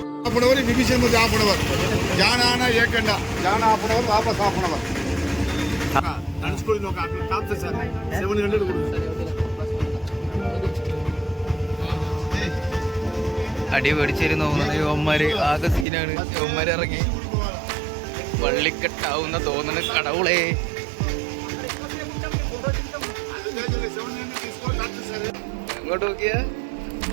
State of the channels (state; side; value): drops out; left; at 15.9 s